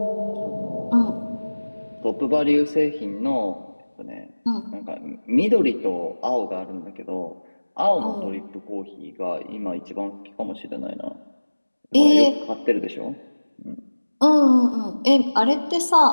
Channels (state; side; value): inverted; both; correlation -1.00